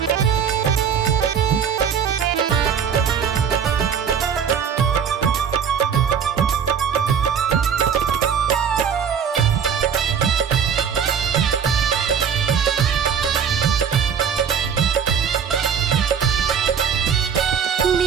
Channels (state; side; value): quieter; left; 7.4 dB